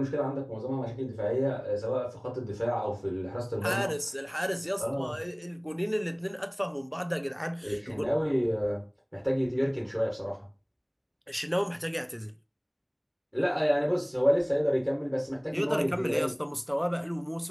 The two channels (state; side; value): identical; both; correlation 1.00